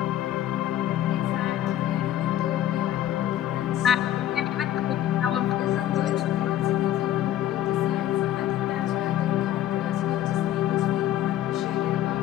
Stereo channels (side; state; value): right; quieter; 12.3 dB